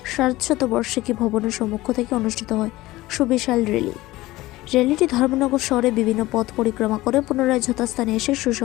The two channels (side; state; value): right; quieter; 18.1 dB